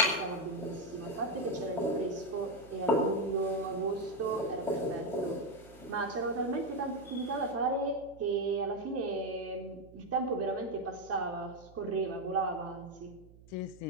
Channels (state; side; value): noise; right; hum, 22 dB below the sound